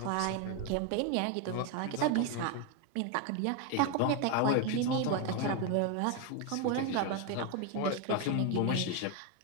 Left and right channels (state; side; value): different; both; correlation 0.01